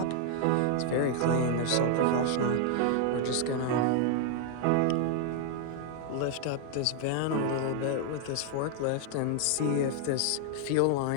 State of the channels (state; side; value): different; both; correlation 0.00